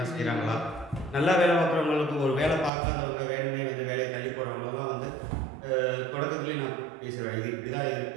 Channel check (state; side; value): drops out; left; at 2.7 s